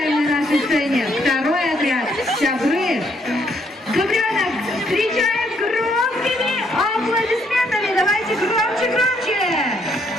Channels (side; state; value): both; normal; correlation 0.71